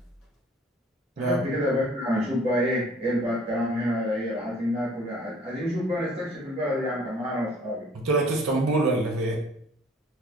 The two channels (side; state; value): both; normal; correlation 0.53